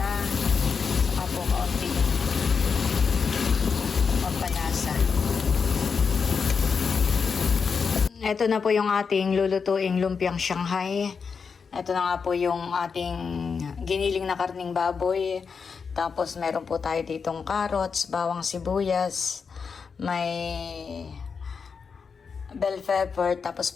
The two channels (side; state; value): right; quieter; 5.7 dB